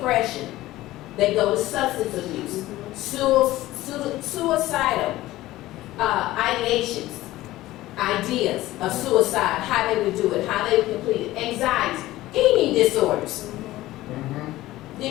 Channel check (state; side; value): quieter; right; 16.6 dB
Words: They go to substance abuse, suicidal ideations, ideas of suicide, how they would do it, how they would complete it, anxiety, eating disorders.